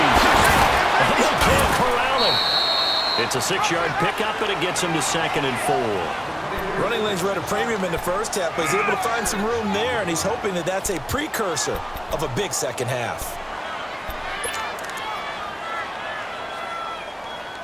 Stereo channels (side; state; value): both; identical; correlation 1.00